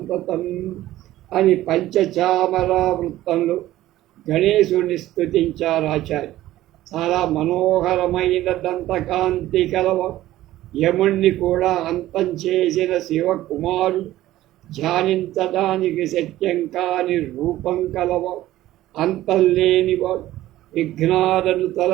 అని పంచచామర వృత్తంలో గణేశుని స్తుతించారు ఆచార్య. చాలా మనోహరమైన దంతకాంతి కలవ, యముణ్ణి కూడా అంతం చేసిన శివకుమారుడు, ధ్యానించడానికి శక్యం కాని రూపం కలవ, అంతం లేనివాడు, విఘ్నాలను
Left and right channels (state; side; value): quieter; left; 15.0 dB